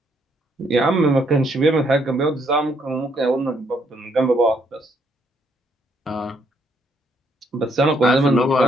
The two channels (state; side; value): normal; both; correlation 0.71